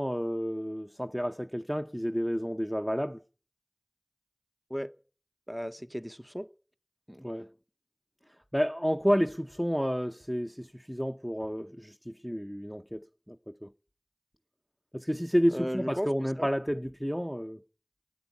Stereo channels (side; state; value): both; identical; correlation 1.00